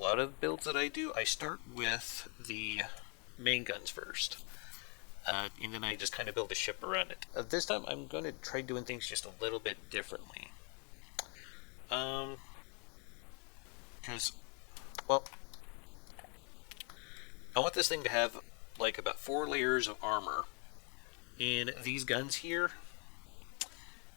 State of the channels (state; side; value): quieter; right; 36.4 dB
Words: of builds that I do, I start with the main guns first. And then I just kind of build a ship around it. This time I'm going to try doing things just a little bit differently. Because, well, I want this thing to have like about 4 layers of armor. And these guns here,